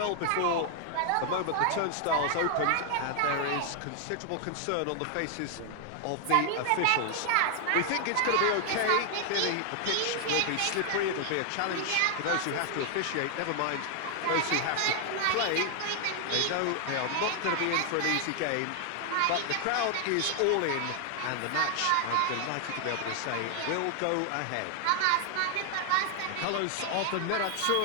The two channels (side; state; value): both; different; correlation 0.00